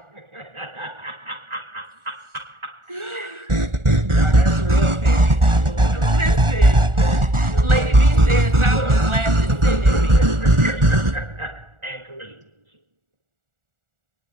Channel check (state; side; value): late; left; 1.4 ms